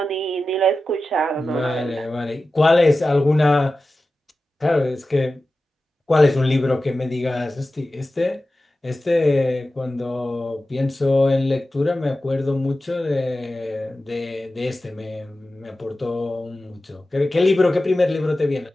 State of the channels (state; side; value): normal; both; correlation 0.94